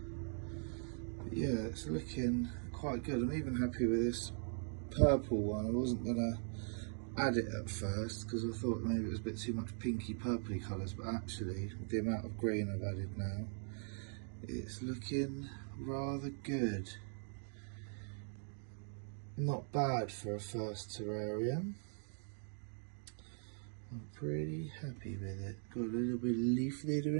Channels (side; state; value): left; silent; 51 dB below the other